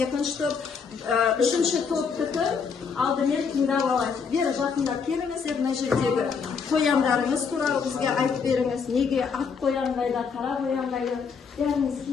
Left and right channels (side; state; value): right; quieter; 5.8 dB